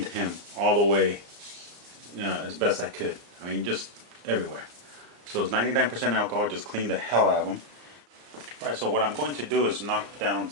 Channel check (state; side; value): late; left; 34 ms